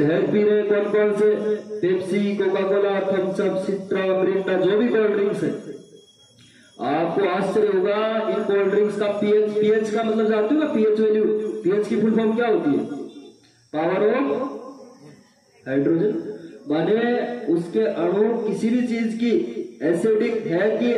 पी रहे कौन कौन से, Pepsi, Coca Cola, Thums Up, Citra, Mirinda, जो भी कोल्ड ड्रिंक्स है। आपको आश्चर्य होगा इन कोल्ड ड्रिंक्स का पीएच का मतलब जानते हो ना, पीएच वैल्यू, पीएच की फुल फॉर्म क्या होती है, पावर ऑफ हाइड्रोजन। माने उसके अणु किसी भी चीज की एसिडिक है कि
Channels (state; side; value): identical; both; correlation 1.00